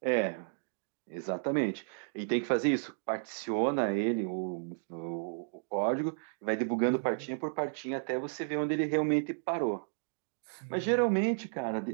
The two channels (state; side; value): silent; left; digital silence